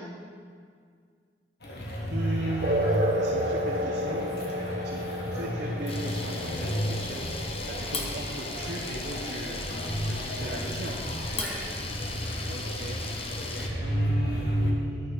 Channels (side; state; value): both; normal; correlation 0.54